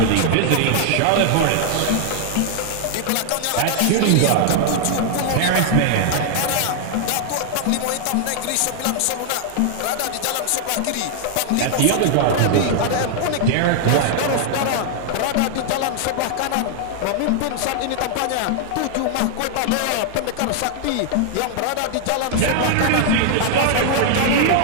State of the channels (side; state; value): both; different; correlation 0.00